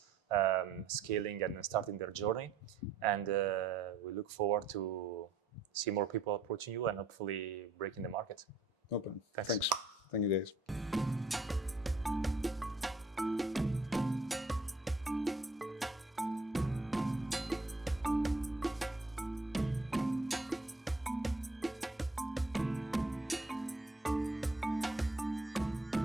scaling and starting their journey. And we look forward to see more people approaching you and hopefully breaking the market. Open. Thanks. Thanks. Thank you, guys.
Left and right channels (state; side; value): quieter; left; 3.3 dB